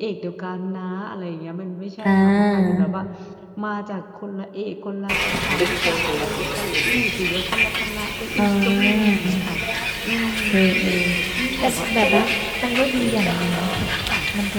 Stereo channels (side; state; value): both; identical; correlation 1.00